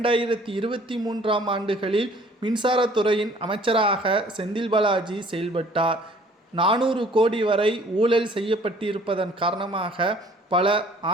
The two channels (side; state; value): both; normal; correlation 0.55